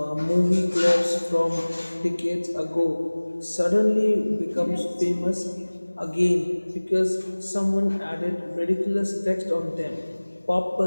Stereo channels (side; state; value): both; inverted; correlation -1.00